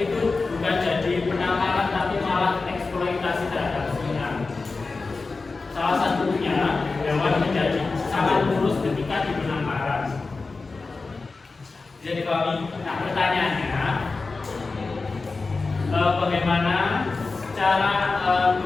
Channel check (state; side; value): quieter; right; 3.9 dB